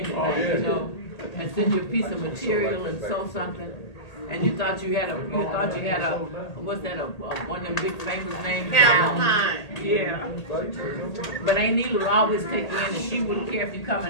you know, and send you a piece of material and sew something. And you thought you had a, what's that, one of them big famous names? Calvin. Yeah. But Aunt Neela would always take you in, and she wouldn't care if you come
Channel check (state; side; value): late; right; 1.8 ms